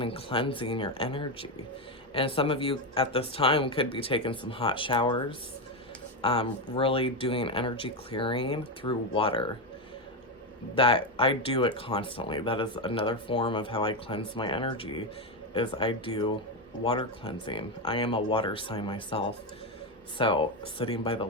and cleansing your energy. And some of you at this time could be taking some hot showers, really doing energy clearing through water. That I do it constantly. That is another form of how I cleanse my energy, is I do water cleansing. I am a water sign myself. So sitting by the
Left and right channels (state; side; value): normal; both; correlation 0.09